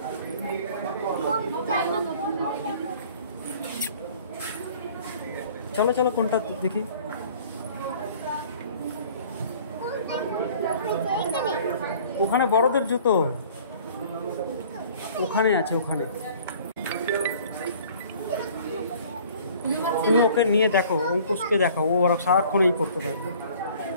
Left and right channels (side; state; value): both; inverted; correlation -0.51